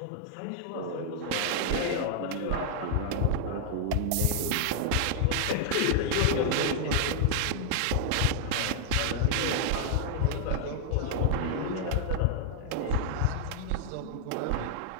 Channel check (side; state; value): both; different; correlation 0.00